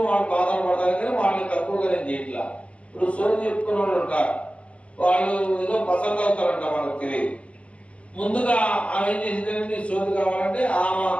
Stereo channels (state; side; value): late; right; 0.061 ms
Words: వాళ్ళు బాధలు పడతారు, కానీ వాళ్ళని తక్కువగా నేను చేయట్లా. ఇప్పుడు సోది చెప్పుకునే వాళ్ళు ఉంటారు, వాళ్ళు ఏదో పసంద అవుతారంట, వాళ్ళకి తెలియదు. ముందుగా ఆమె ఏం చేసిందంటే సోది కావాలంటే ఆమె